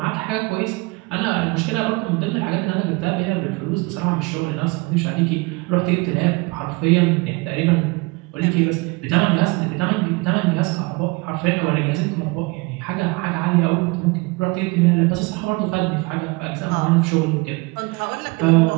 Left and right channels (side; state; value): left; quieter; 25.9 dB